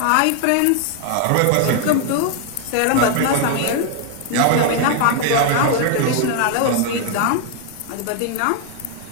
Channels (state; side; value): different; both; correlation 0.00